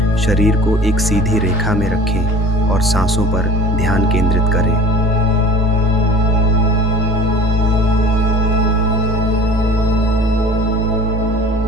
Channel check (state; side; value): normal; both; correlation 0.42